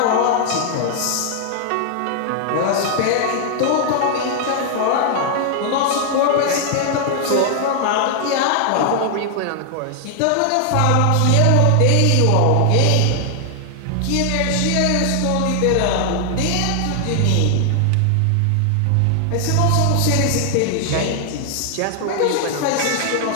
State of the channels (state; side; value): different; both; correlation 0.00